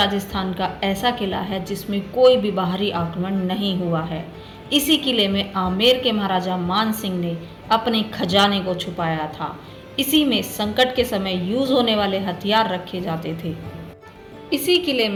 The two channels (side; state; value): both; identical; correlation 1.00